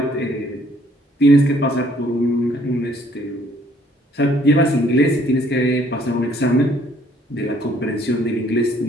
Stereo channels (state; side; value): normal; both; correlation 0.62